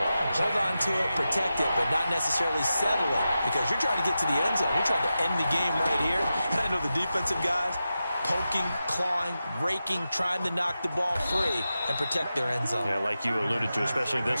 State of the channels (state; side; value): inverted; both; correlation -0.91